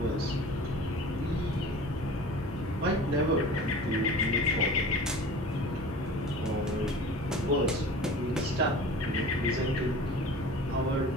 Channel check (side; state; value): both; normal; correlation 0.40